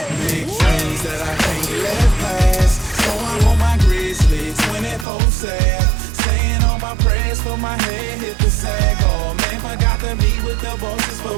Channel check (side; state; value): left; drops out; at 5.1 s